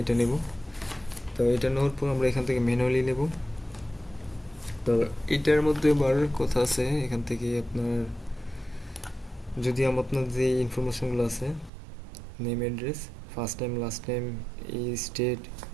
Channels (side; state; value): left; drops out; at 11.7 s